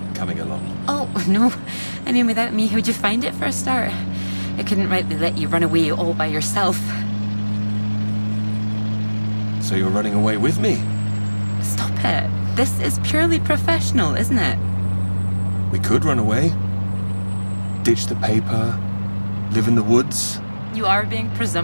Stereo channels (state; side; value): inverted; both; correlation -1.00